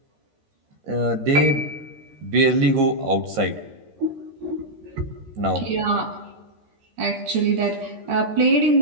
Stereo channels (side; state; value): left; late; 13 ms